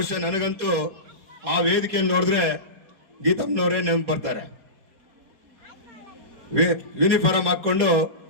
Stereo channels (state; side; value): late; left; 4.2 ms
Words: ನನಗಂತೂ ಆ ವೇದಿಕೆಯನ್ನು ನೋಡಿದ್ರೆ ಗೀತಮ್ಮನವರೇ ನೆನಪು ಬರ್ತಾರೆ. ಯೂನಿಫಾರ್ಮ್ ಹಾಕೊಂಡು